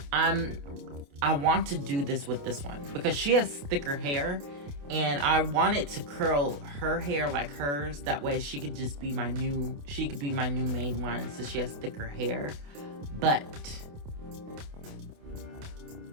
I want to do this with this one because she has thicker hair and I wanted to curl her hair like hers. That way she could just be my new main one since she has thicker hair. But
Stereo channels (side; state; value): left; late; 28 ms